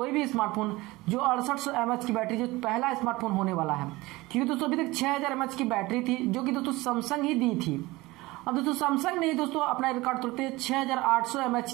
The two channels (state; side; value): quieter; left; 20.7 dB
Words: भी स्मार्टफोन जो 6800 mAh की बैटरी जो पहला स्मार्टफोन होने वाला है, क्योंकि दोस्तों अभी तक 6000 mAh की बैटरी थी जो कि दोस्तों सैमसंग ही दी थी। अब दोस्तों सैमसंग ने दोस्तों अपना रिकॉर्ड तोड़ते 6800 mAh